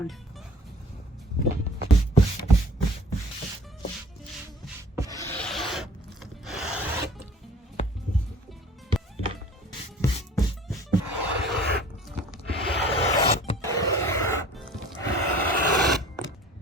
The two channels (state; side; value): normal; both; correlation 0.49